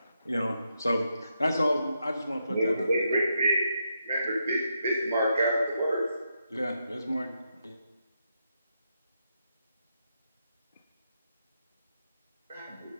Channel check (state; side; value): inverted; both; correlation -0.82